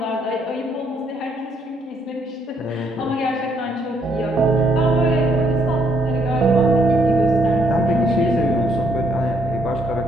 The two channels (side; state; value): both; normal; correlation 0.70